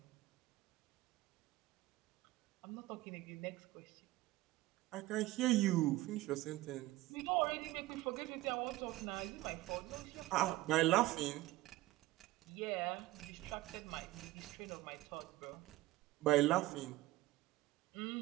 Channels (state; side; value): quieter; left; 17.7 dB